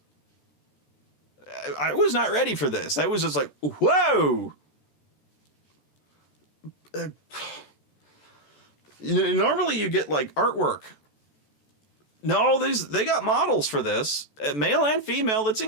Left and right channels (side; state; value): right; late; 14 ms